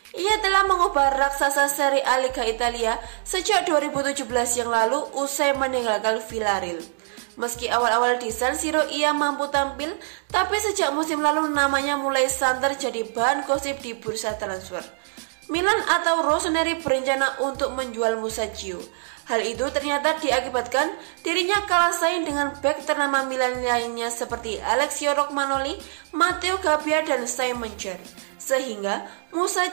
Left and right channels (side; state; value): left; silent; digital silence